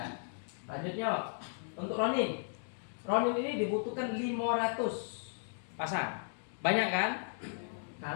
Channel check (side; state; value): right; silent; digital silence